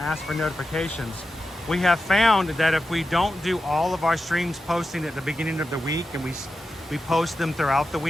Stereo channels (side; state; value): both; normal; correlation 0.91